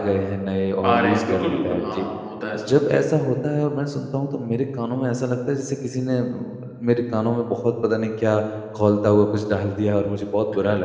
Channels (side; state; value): both; identical; correlation 1.00